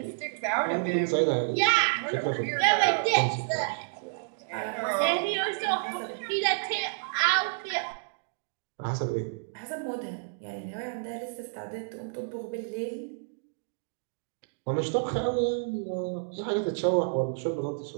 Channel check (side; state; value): left; silent; digital silence